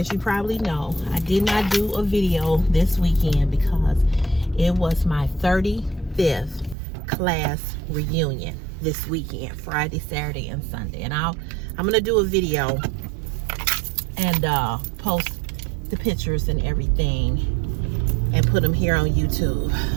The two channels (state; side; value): drops out; left; at 6.8 s